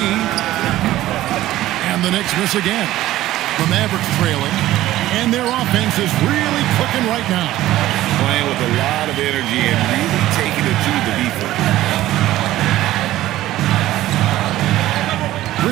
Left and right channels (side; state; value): left; quieter; 15.1 dB